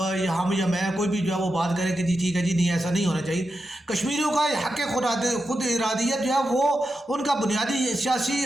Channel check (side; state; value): both; normal; correlation 0.88